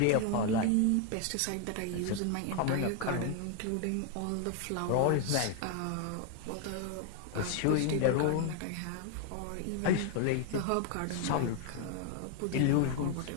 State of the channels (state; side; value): different; both; correlation 0.01